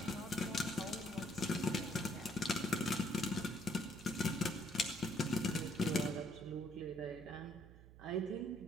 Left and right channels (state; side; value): noise; right; hum, 18 dB below the sound